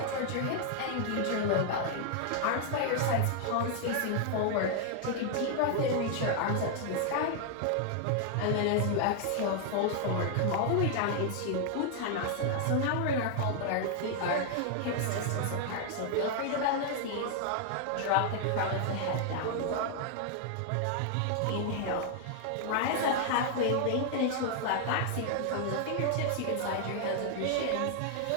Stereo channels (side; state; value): both; different; correlation 0.00